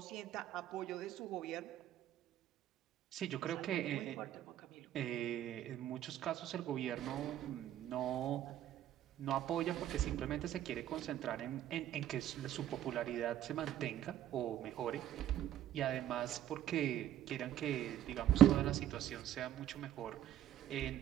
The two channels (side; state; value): left; quieter; 11.8 dB